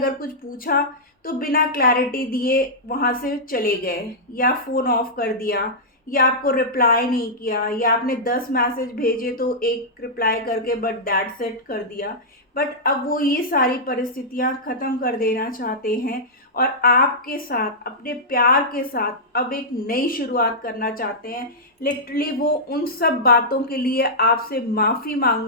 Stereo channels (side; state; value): both; normal; correlation -0.11